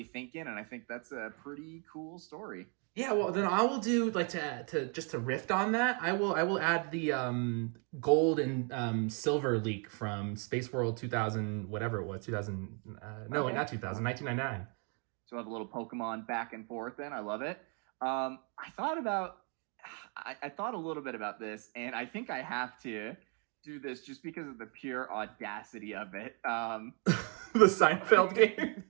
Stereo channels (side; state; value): left; quieter; 38.3 dB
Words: thinking, and I think that's a pretty cool story. Yeah, well then I will do to riff on that. I will add the gold and silver leak from Space World 2000, whatever it was, 2000. No, not 2000, 1999. So have a little Pokemon back and forth then. I love it. I thought a little bit about this, and I think I have to do this just because of the pure audacity of it. The Seinfeld game?